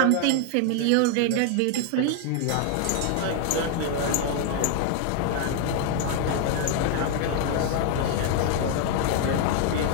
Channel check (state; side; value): different; both; correlation 0.00